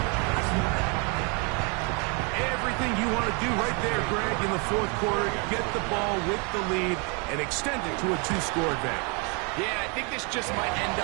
Everything the lead and extend it to a 2-score advantage. Yeah, I think this just might end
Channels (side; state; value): left; quieter; 33.8 dB